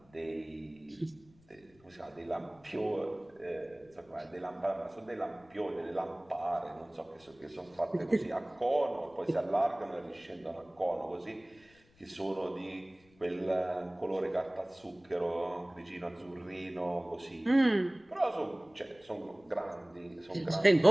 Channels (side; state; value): left; noise; rumble, 30 dB below the sound